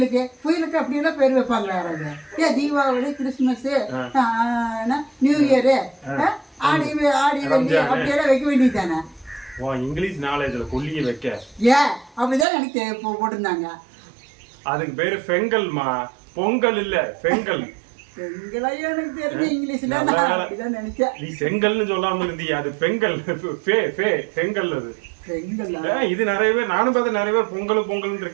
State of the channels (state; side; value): drops out; left; at 12.5 s